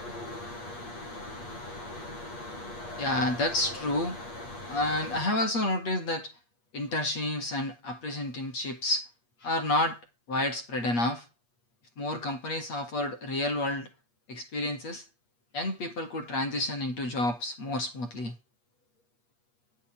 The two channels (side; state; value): right; late; 8.4 ms